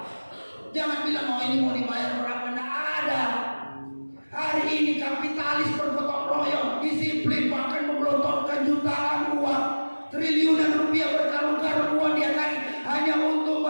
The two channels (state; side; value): inverted; both; correlation -1.00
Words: Jangan bilang ini mau dibayar berapa, tidak ada. Hari ini kapitalis bergotong royong, disiplin, bahkan menggelontorkan jutaan uang, triliunan rupiah, berkarung-karung uang dia hanya untuk